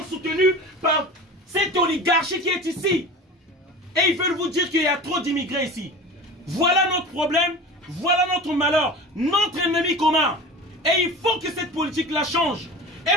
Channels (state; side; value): normal; both; correlation 0.34